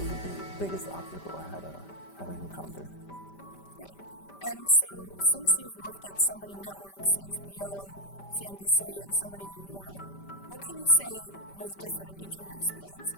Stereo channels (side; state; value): right; late; 5.1 ms